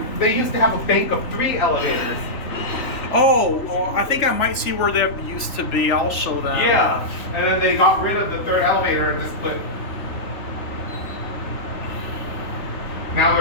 They used to have a bank of 3 elevators. Oh, I think I might see where they used to be. I'll show them. Yeah, and then they got rid of the 3rd elevator and just put. Now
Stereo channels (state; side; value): late; right; 3.5 ms